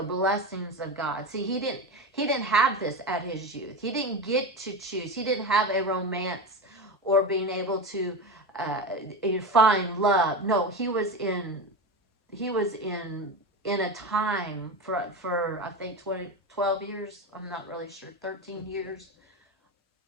blessings of God. See, he didn't have this at his youth. He didn't get to choose. He didn't have a romance or being able to find love. No, he was in a time for I think 12 years. I'm not really sure, 13 years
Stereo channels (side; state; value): both; normal; correlation 0.21